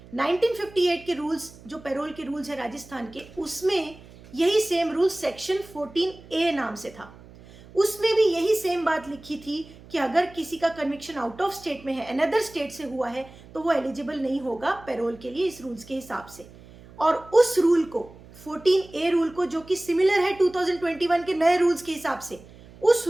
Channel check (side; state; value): right; noise; hum, 21 dB below the sound